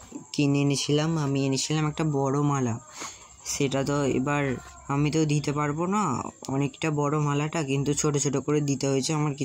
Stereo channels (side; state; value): both; identical; correlation 1.00